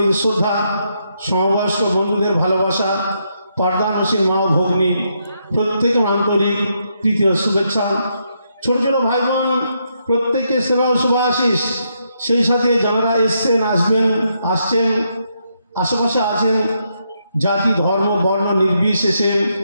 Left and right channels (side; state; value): both; inverted; correlation -0.78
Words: শ্রদ্ধা, সমবয়স্ক বন্ধুদের ভালোবাসা, পর্দানশীল মা ও ভগ্নী প্রত্যেকে আন্তরিক তৃতীয় শুভেচ্ছা। ছোট ছোট ভাই বোন প্রত্যেককে সেবা ও শুভাশিস। সেই সাথে যারা এসছেন, আসবেন, আসছেন, আশেপাশে আছেন, জাতি, ধর্ম, বর্ণ নির্বিশেষে